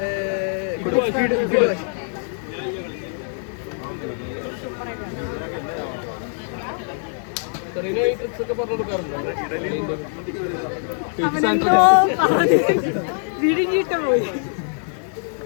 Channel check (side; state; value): right; silent; 63 dB below the other